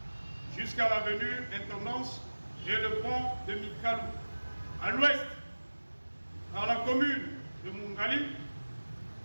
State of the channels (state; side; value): inverted; both; correlation -1.00